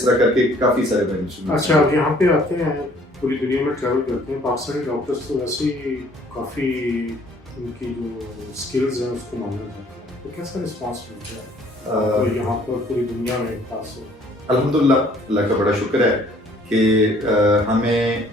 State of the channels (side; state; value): both; normal; correlation 0.59